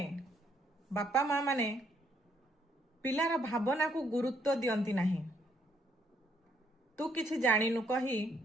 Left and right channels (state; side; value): normal; both; correlation 0.71